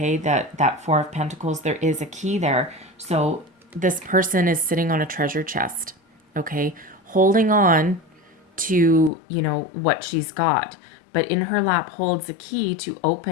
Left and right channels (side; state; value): right; drops out; at 9.1 s